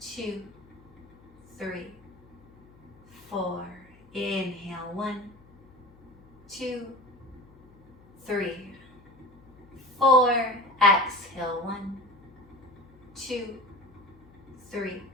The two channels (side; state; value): left; noise; hum, 26 dB below the sound